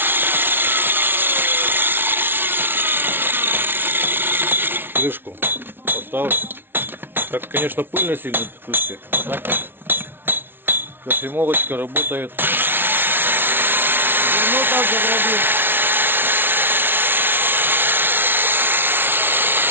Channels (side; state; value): left; late; 0.10 ms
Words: Крышку поставлю. Так, конечно, пыльно сильно в крышке. А так кофемолочка работает. Ну, так заграбим.